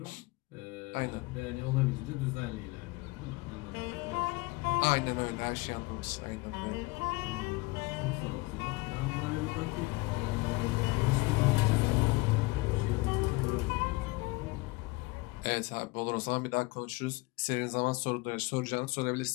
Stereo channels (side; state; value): right; quieter; 23.4 dB